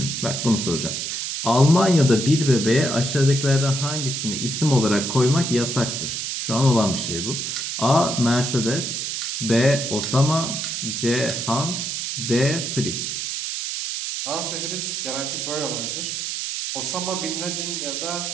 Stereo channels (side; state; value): right; noise; hiss, 3 dB below the sound